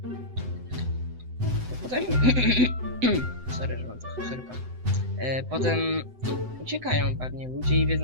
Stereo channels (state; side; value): late; left; 7.9 ms